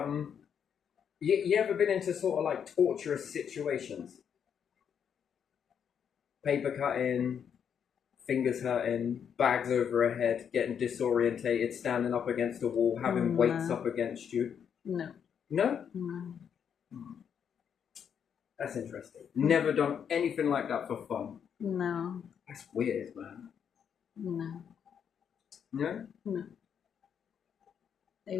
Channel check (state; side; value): quieter; right; 7.8 dB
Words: you ever been into sort of like torturous situations? Paper cutting, fingers hurting, bags over her head, getting disorientated, standing up against a wall, having weights up against you? No. No? No. That's interesting. Never done anything like that for fun? No. That's weird, man. No. No? No. I